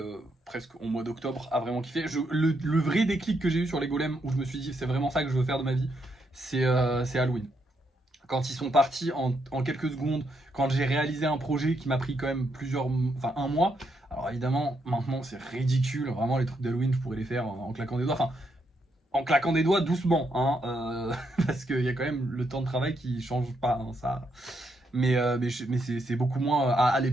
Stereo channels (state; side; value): normal; both; correlation 0.78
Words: presque au mois d'octobre à vraiment kiffer. Le vrai déclic que j'ai eu sur les golems où je me suis dit c'est vraiment ça que je veux faire de ma vie, c'est Halloween. Quand ils sont partis en quelques secondes, quand j'ai réalisé un projet qui m'a pris quand même enfin 1 mois. Alors évidemment maintenant c'est ridicule, vraiment les trucs d'Halloween je pourrais les faire en claquant des doigts. Enfin, en claquant des doigts doucement, hein, parce qu'il y a quand même le temps de travail qui change pas, hein, ça. Mais c'est beaucoup moins. À